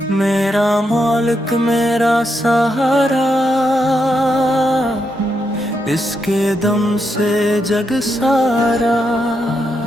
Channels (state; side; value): normal; both; correlation 0.82